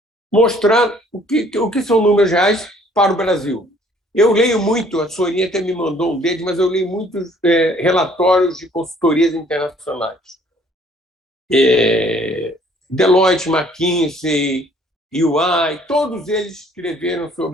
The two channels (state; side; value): normal; both; correlation 0.59